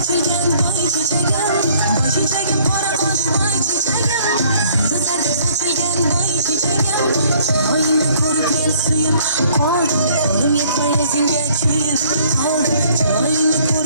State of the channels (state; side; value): inverted; both; correlation -0.60